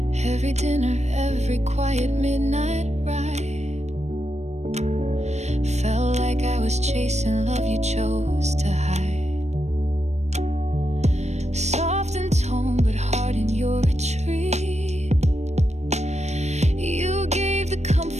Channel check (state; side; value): late; left; 0.32 ms